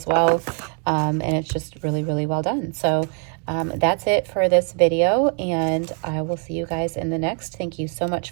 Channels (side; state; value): left; quieter; 38.9 dB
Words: well. And it's just really, really well done. So that's it for this video, and I will see you guys in the next. Thank you so much